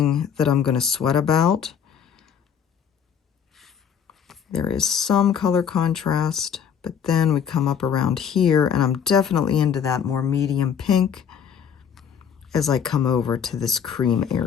that I'm going to sweat about. There is some color contrast, but then we come up around here, and I'm definitely into that more medium pink as I come over to this cream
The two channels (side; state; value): right; quieter; 7.6 dB